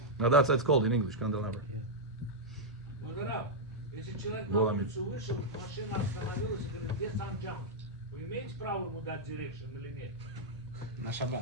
Now that's what it's called in English, candelabra. Модерав, если человек на Было улицу вышел, машина остановилась, и говорит, где санджам? Вы имеете право ему дать дирекшн или нет? На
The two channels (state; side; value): normal; both; correlation -0.05